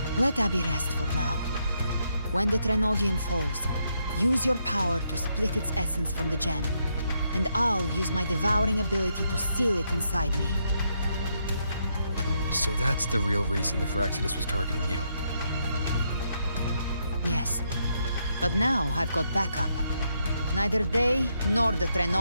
Let Abby rest for now. When the Threnodian falls, use your power to split its essence from the gem, and I'll use my devouring ability to seal it inside me. So that's the real reason the Phyrexidas was targeting you. Yes, but now I've got backup. Neither they nor the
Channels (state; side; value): inverted; both; correlation -0.78